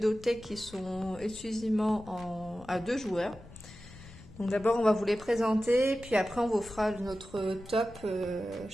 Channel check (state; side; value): noise; left; rumble, 19 dB below the sound